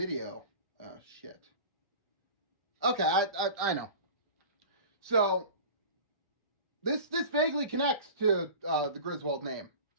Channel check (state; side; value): inverted; both; correlation -0.36